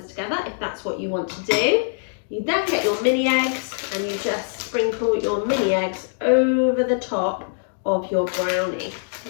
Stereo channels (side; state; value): right; silent; digital silence